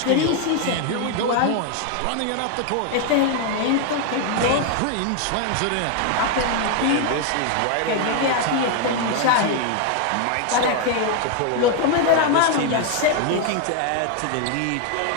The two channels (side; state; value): both; different; correlation 0.01